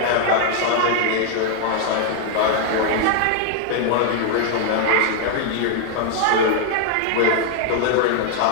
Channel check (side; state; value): both; different; correlation 0.00